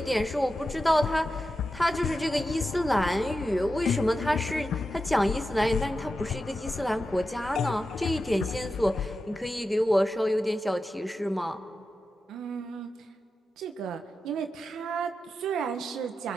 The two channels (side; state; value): both; normal; correlation 0.90